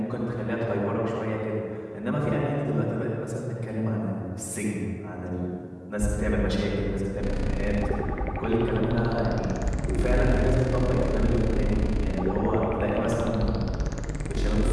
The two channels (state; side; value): identical; both; correlation 1.00